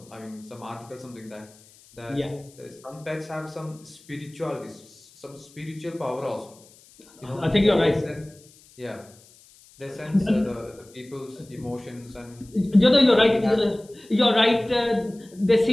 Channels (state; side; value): noise; left; hiss, 26 dB below the sound